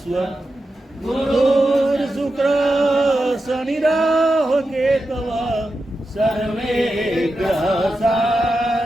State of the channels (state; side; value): normal; both; correlation 0.90